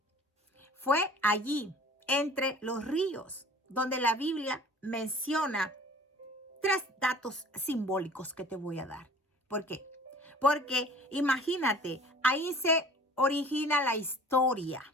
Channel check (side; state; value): both; normal; correlation 0.47